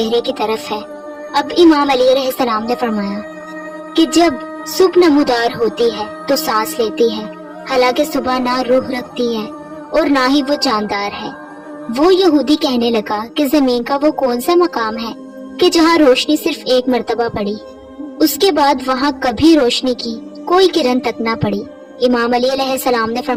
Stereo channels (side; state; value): both; identical; correlation 1.00